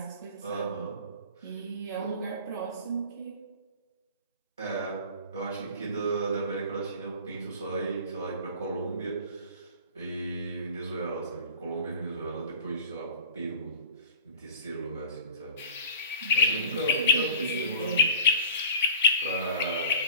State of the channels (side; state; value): both; inverted; correlation -0.42